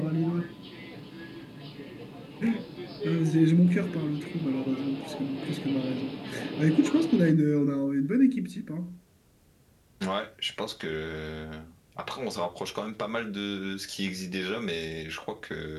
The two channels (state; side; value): identical; both; correlation 1.00